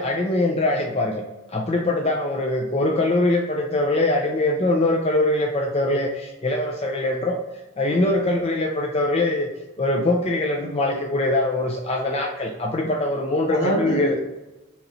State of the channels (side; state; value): both; normal; correlation 0.28